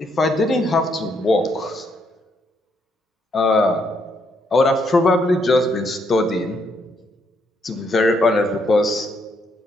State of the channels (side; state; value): both; normal; correlation 0.74